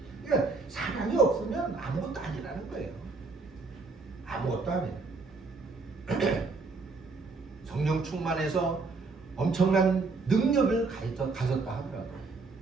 그러니까 사랑이 없으면 아무것도 아니라는 거예요. 아무것도 아니에요. 성령 충만해서 엄청난 능력을 가졌다 하더라도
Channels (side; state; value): left; quieter; 4.0 dB